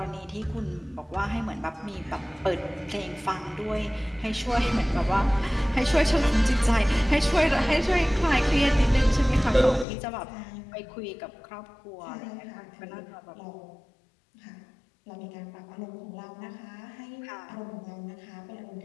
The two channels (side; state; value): right; drops out; at 9.9 s